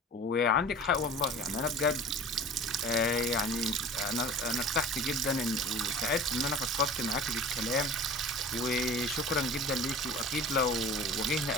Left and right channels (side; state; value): both; normal; correlation 0.40